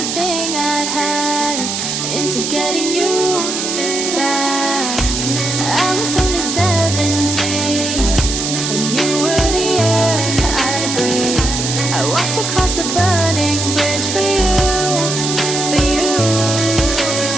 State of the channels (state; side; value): noise; right; hiss, 3 dB below the sound